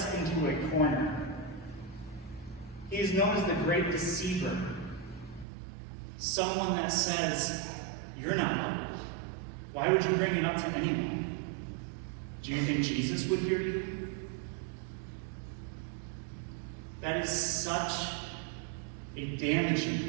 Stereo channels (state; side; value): drops out; left; at 5.5 s